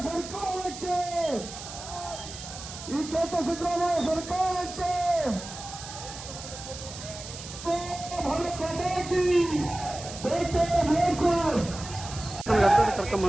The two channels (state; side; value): noise; right; hiss, 12 dB below the sound